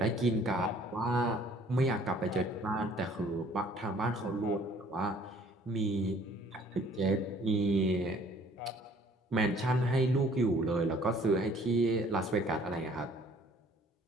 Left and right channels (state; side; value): normal; both; correlation 0.56